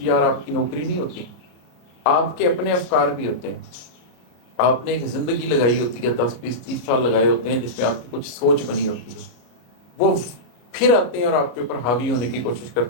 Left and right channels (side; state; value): right; late; 33 ms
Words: یار آپ کی نوکری نہیں ہوتی، آپ کے اپنے افکار بھی ہوتے ہیں. آپ نے ایک زندگی لگائی ہوتی ہے، 10 20 30 سال لگائے ہوتے ہیں جس میں آپ کی کچھ سوچ بنی ہوتی ہے. وہ پھر آتے ہیں اور آپ کے اوپر حاوی ہونے کی کوشش